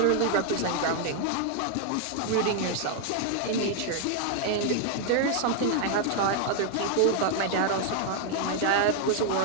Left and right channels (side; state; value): both; different; correlation 0.00